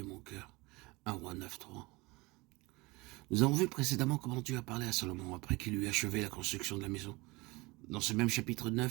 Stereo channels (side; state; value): left; quieter; 23.7 dB